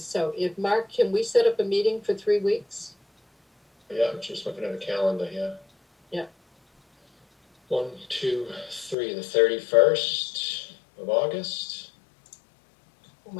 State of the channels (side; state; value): right; drops out; at 9.0 s